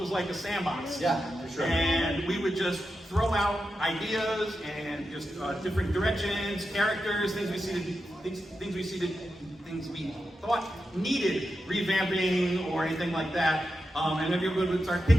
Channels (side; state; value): both; normal; correlation 0.89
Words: like a sandbox. Yeah, for sure. And we would just throw out ideas and just different directions, characters, things we thought needed revamping or anything like that. And everyone would start